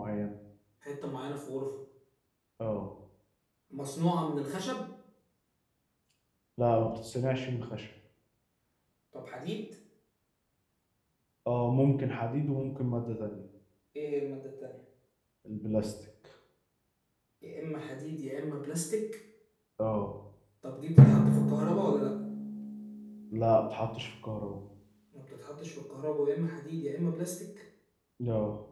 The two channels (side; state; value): both; identical; correlation 1.00